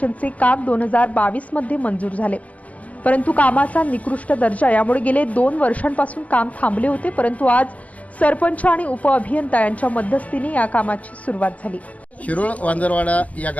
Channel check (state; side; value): late; right; 0.069 ms